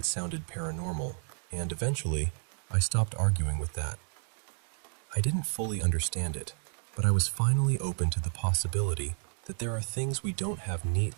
sounded paranormal, and eventually, I stopped arguing with that. I didn't fully understand it, but I was finally open to the possibility that there are things we don't have neat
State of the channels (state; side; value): silent; left; 57 dB below the other